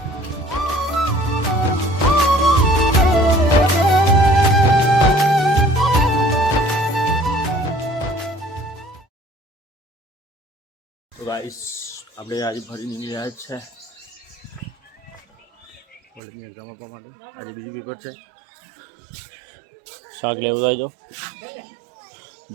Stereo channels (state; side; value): drops out; left; at 16.2 s